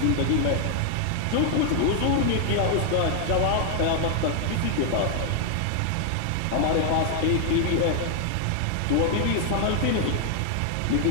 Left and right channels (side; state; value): both; different; correlation 0.00